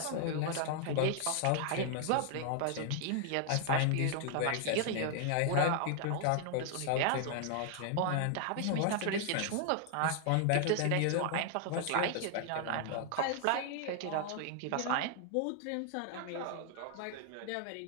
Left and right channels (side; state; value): both; different; correlation 0.00